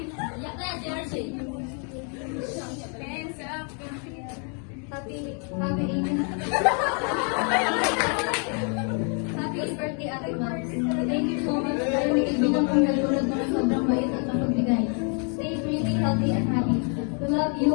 up. Happy birthday, Ate Max. Thank you so much dahil may kaibigan kong nalulod mo na sobrang bait at mapagbigay. Stay really healthy and happy. We love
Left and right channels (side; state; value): right; quieter; 39.9 dB